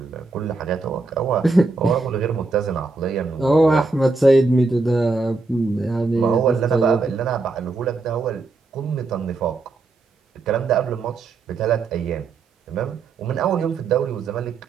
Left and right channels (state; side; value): quieter; left; 3.7 dB